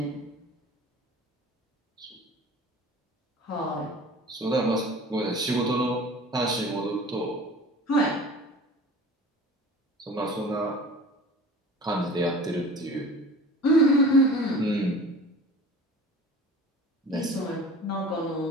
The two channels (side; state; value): both; normal; correlation 0.41